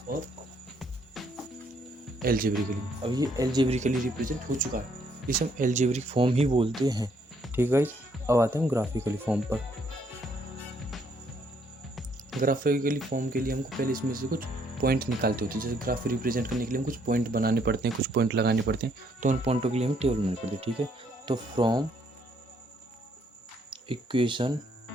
और एल्जेब्रिकली। अब ये एल्जेब्रिकली रिप्रेजेंट हो चुका है, इसे हम एल्जेब्रिक फॉर्म ही बोलते हैं। ठीक है गाइस, अब आते हैं हम ग्राफिकली फॉर्म पर। ग्राफिकली फॉर्म के लिए हमको पहले इसमें से कुछ पॉइंट निकालते होते हैं। जैसे ग्राफ रिप्रेजेंट करने के लिए हम कुछ पॉइंट बनाने पड़ते हैं, कुछ पॉइंट लगाने पड़ते हैं, तो उन पॉइंटों के लिए हमें टेबल बनानी पड़ती है। ठीक है, तो फ्रॉम इक्वेशन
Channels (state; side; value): normal; both; correlation 0.69